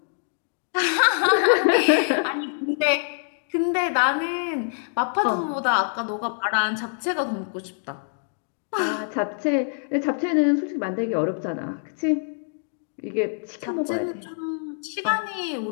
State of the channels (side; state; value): right; silent; digital silence